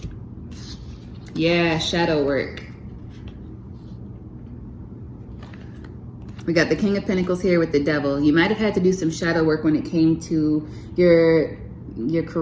Yeah, shadow work. We got the King of Pentacles here with the Devil. You might have had to do some shadow work when it came to your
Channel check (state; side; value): identical; both; correlation 1.00